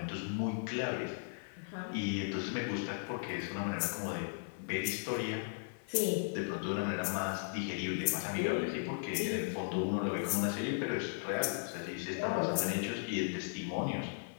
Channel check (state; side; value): silent; right; 53 dB below the other